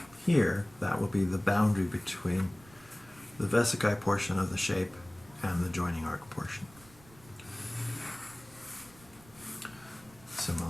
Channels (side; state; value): right; noise; rumble, 24 dB below the sound